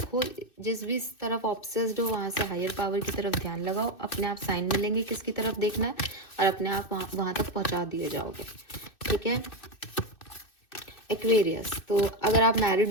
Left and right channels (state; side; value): late; right; 2.6 ms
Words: जिस भी तरफ ऑब्सेस्ड हो वहाँ से हायर पावर की तरफ ध्यान लगाओ, अपने आप साइन मिलेंगे किसकी तरफ देखना है और अपने आप वहाँ तक पहुँचा दिए जाओगे। ठीक है। एक्वेरियस, तो अगर आप